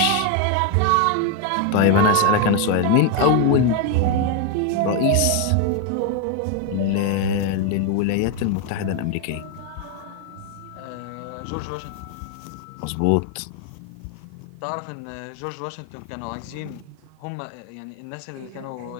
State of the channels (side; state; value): both; different; correlation 0.01